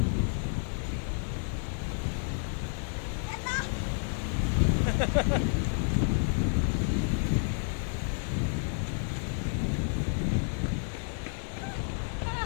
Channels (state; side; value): silent; right; 57 dB below the other